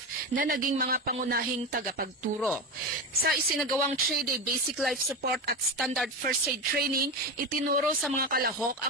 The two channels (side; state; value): both; normal; correlation 0.20